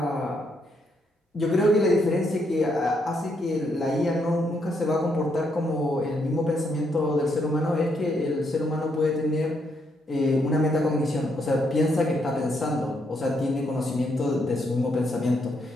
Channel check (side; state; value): both; normal; correlation 0.76